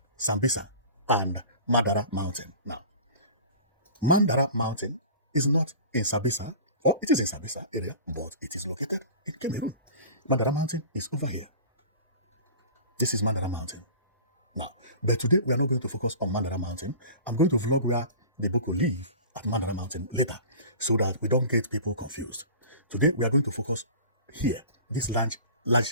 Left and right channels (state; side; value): inverted; both; correlation -0.39